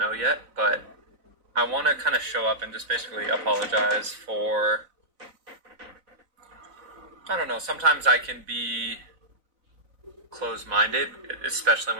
yet, but I want to kind of show up and just basically apologize for, I don't know, sometimes I can be closed-minded, especially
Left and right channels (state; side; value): late; left; 4.0 ms